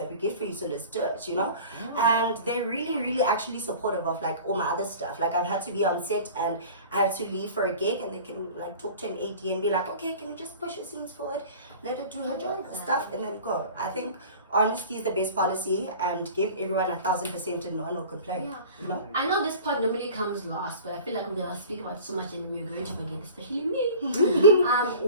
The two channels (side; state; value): both; inverted; correlation -0.41